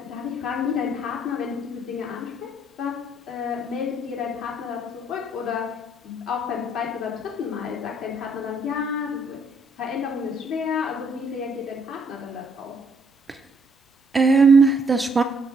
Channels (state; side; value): normal; both; correlation 0.67